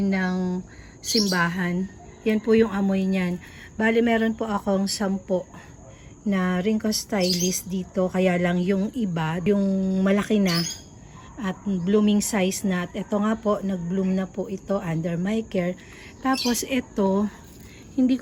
ng simbahan. Yan po yung amoy niyan. Bali, meron po akong 10 na Ringko Stylist dito. Kaya lang yung iba, yung malaki na at blooming size na. At ito nga po, nag-bloom na po ito under my care. Tapos ito, hindi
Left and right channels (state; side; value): identical; both; correlation 1.00